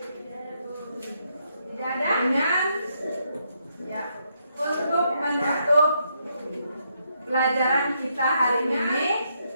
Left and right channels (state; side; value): inverted; both; correlation -0.77